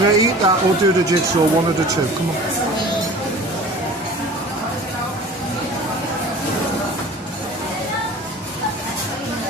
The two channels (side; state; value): both; normal; correlation 0.42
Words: to eat that or do the jigsaw, one of the two. Come on.